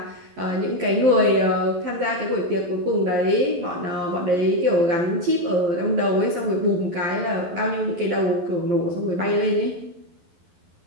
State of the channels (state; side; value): late; left; 12 ms